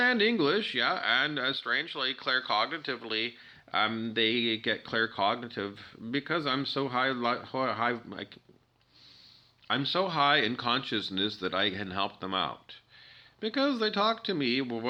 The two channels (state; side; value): identical; both; correlation 1.00